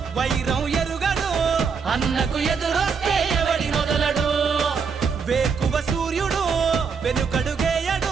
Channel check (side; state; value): left; quieter; 5.7 dB